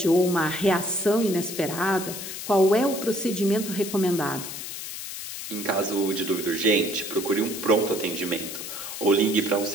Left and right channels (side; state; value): left; noise; hiss, 8 dB below the sound